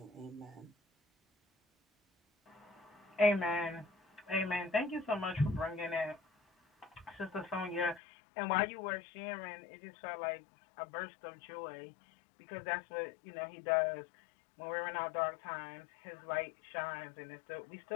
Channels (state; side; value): drops out; right; at 8.0 s